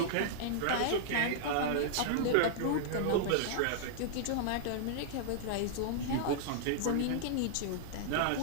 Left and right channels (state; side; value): different; both; correlation -0.01